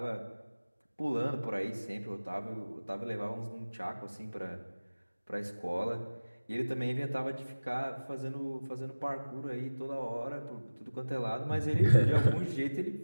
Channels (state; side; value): inverted; both; correlation -1.00